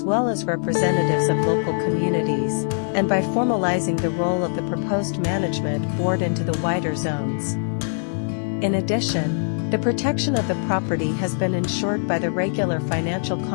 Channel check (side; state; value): right; silent; 64 dB below the other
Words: well as representatives of local communities, and by formalizing the role of the proposed management board into the wider zones. In addition, the protection of the property has been ensured by the regular financial